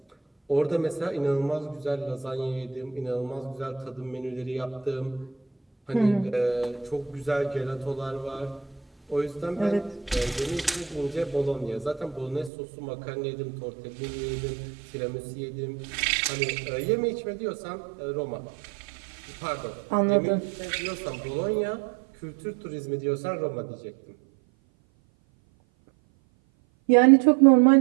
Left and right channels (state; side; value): drops out; left; at 12.5 s